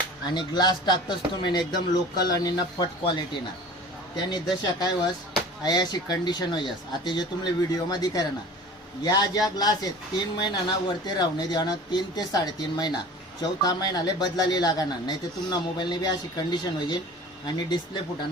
आणि ग्लास टाकतस तुम्ही एकदम लोकल आणि नफट क्वालिटीना. त्याने दशा काय वस अशी कंडिशन होयस. आता जे तुम्हाला व्हिडिओमध्ये करा ना, या ज्या ग्लास आहेत 3 महिन्याना वरती राहणे देणं, 3 ते 3.5 महिना, चौथा महिनाले बदलाली लागणार. नाही तर तुमना मोबाईलने बी अशी कंडिशन होईल आणि डिस्प्ले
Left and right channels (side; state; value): both; normal; correlation 0.41